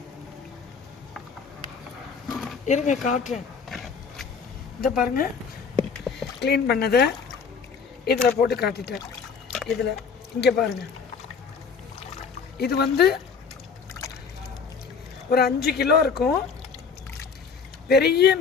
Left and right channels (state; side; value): quieter; right; 5.7 dB